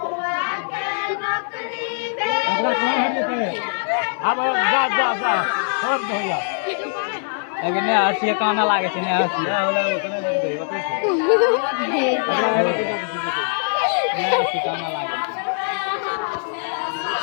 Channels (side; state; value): right; silent; 62 dB below the other